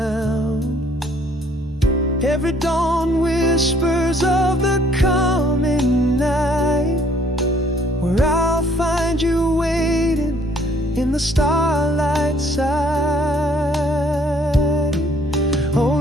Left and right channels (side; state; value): both; normal; correlation 0.61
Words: Every dawn whispers of the coming night, where I'll find you waiting in the starlight side. Oh,